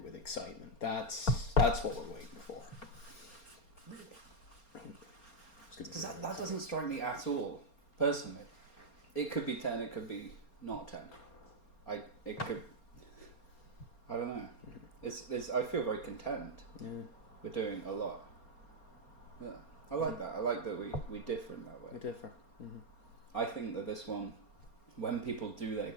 excitement. That's what we're waiting for. Because that doesn't strike me at all, personally. It could be 10, it could be not 10. I don't know. I feel very content. Yeah. We're doing a lot. Yeah, I like that. I like that we differ in that way. We differ. Mm-hmm. I think that this one, when people do their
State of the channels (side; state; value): right; late; 4.3 ms